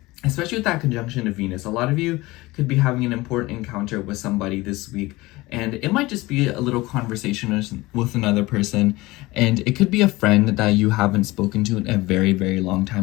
Especially with that conjunction of Venus, a lot of you could be having an important encounter with somebody this week, and it might just be a little conversation with another person, and it could be a friend that you haven't spoken to in a very, very long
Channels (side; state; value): right; quieter; 20.5 dB